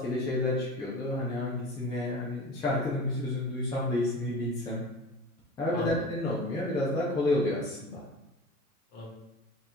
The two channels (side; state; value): both; normal; correlation 0.36